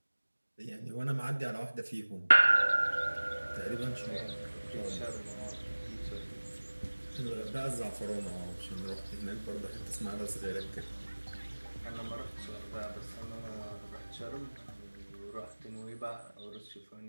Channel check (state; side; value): inverted; both; correlation -1.00